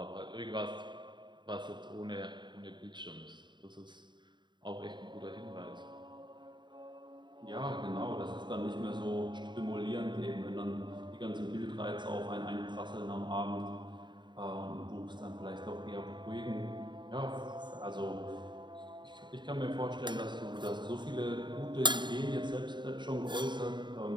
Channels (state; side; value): late; left; 0.22 ms